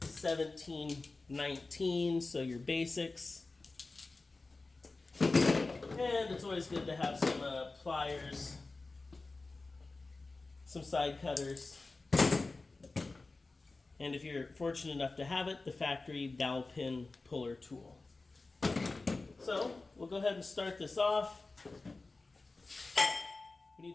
17, 19, so your basics. And it's always good to have some pliers, some side cutters. And if you're fortunate enough to have it, the factory dowel pin puller tool. So we'll go ahead and start this off. We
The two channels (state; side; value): quieter; right; 3.5 dB